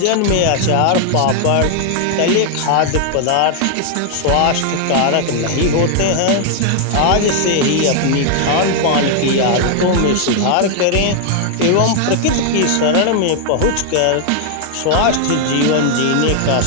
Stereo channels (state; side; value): different; both; correlation 0.00